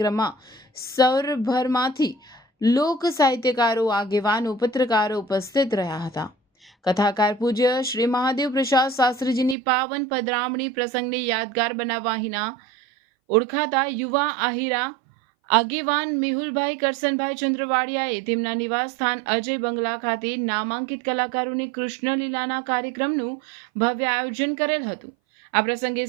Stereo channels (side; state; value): left; drops out; at 9.6 s